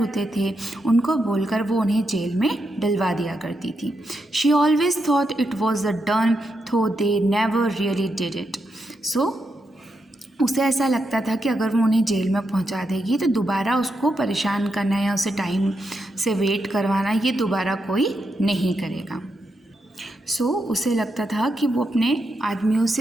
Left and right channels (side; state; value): both; normal; correlation 0.84